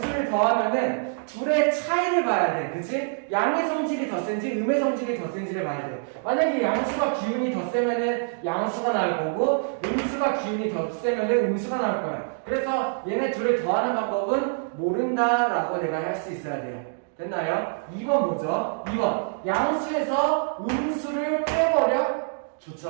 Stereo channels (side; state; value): left; silent; digital silence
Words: 더하면은 둘의 차이를 봐야 돼. 그치? 양의 성질이 더 센지 음의 성질이 더 센지를 봐야 돼. 만약에 양수가 기운이 더 세면은 양수가 나올 거고 음수가 기운이 더 세면은 음수가 나올 거야. 그래서 얘네 둘을 더하는 방법은 모른다라고 내가 할 수 있어야 돼요. 됐나요? 2번 뭐죠? 2번 양수에서 음수를 빼버려?